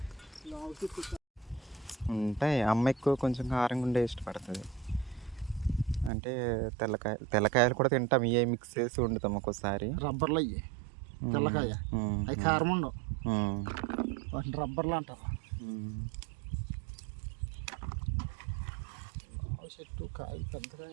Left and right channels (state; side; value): drops out; left; at 6.1 s